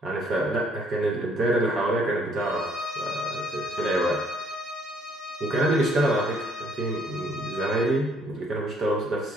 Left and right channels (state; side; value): normal; both; correlation 0.64